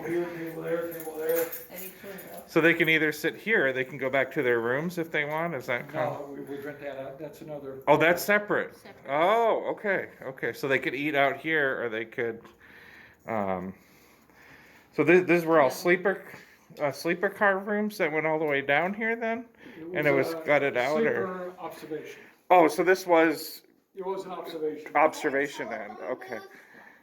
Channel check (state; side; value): identical; both; correlation 1.00